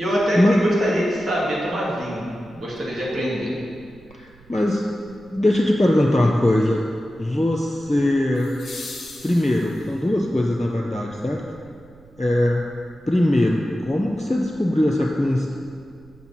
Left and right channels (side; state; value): right; noise; rumble, 26 dB below the sound